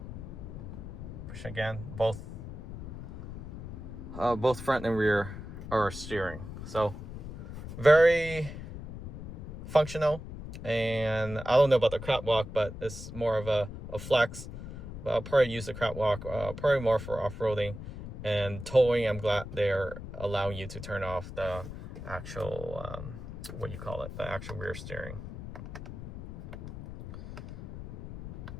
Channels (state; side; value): noise; left; rumble, 10 dB below the sound